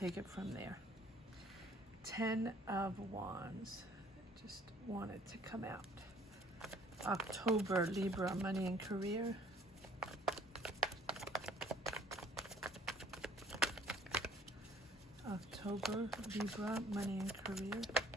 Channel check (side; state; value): both; normal; correlation 0.56